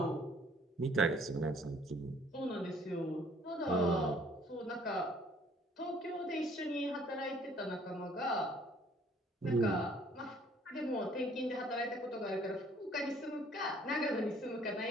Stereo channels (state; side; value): normal; both; correlation 0.59